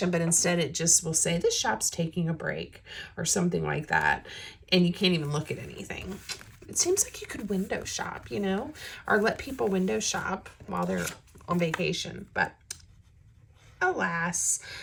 but instead it just will say the shop's taking a break or something like that, and you can't even look at anything. It seems like you could window shop, you know, or let people window shop while they're on vacation, but alas,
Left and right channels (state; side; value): identical; both; correlation 1.00